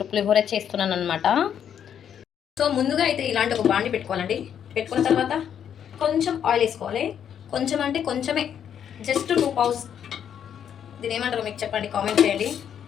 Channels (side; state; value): right; quieter; 8.8 dB